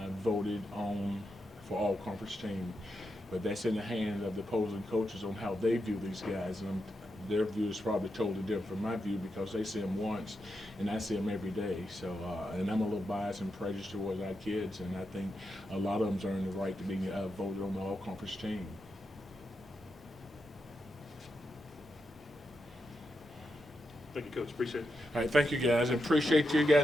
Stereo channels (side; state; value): both; normal; correlation 0.86